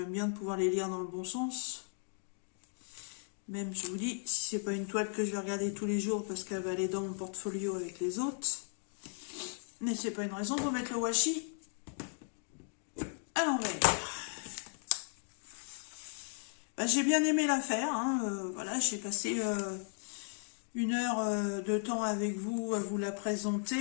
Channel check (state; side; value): silent; right; 54 dB below the other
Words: bien de pouvoir les lire dans le bon sens. Même, je vous dis, si c'est pas une toile que je vais regarder tous les jours parce qu'elle va aller dans mon portfolio avec les autres. Mais c'est pas une raison pour mettre le washi à l'envers. Bah, j'ai bien aimé l'affaire. Hein, voilà, j'ai passé 1 heure de temps avec vous à vous la